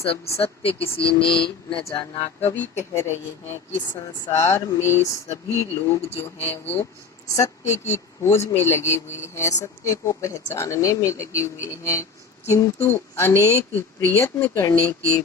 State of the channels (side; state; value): right; quieter; 5.0 dB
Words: सत्य किसी ने न जाना। कवि कह रहे हैं कि संसार में सभी लोग जो हैं वो सत्य की खोज में लगे हुए हैं, सत्य को पहचानने में लगे हुए हैं, किंतु अनेक प्रयत्न करने के